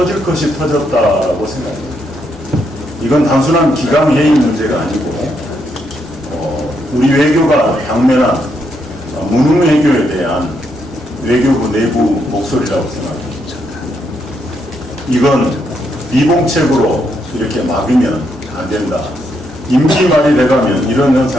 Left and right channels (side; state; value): both; normal; correlation 0.78